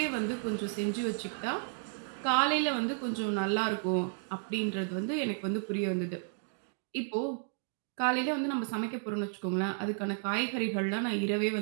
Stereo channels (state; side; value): silent; left; digital silence